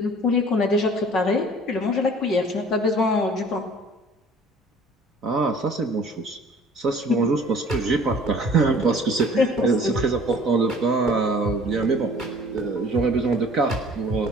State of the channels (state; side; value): normal; both; correlation 0.50